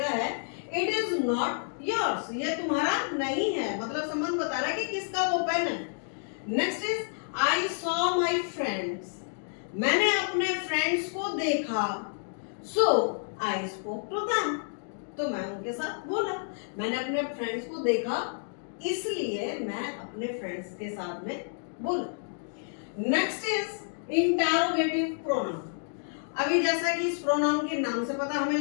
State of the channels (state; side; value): silent; right; digital silence